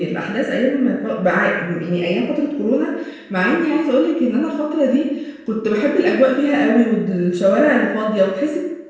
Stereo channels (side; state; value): both; identical; correlation 1.00